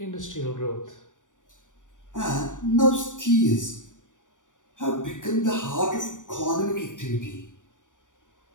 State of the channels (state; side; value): late; right; 0.87 ms